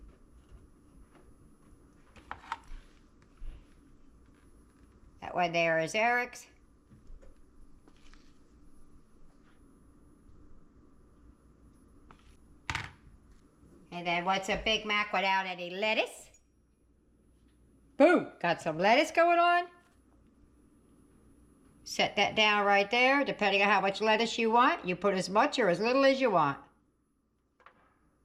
That one there is Eric's. And then what's a Big Mac without any lettuce? Boom! Got some lettuce going on. Set that down right there. Depending on how much lettuce you want, you put as much or as little as you want.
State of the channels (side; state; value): both; identical; correlation 1.00